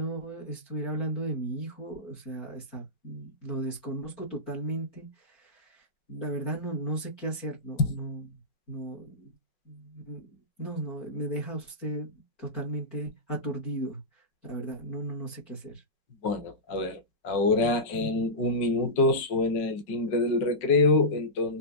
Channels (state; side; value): late; right; 4.4 ms